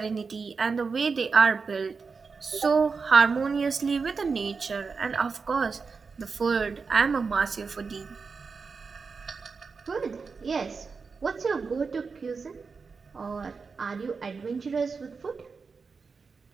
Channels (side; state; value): left; quieter; 4.9 dB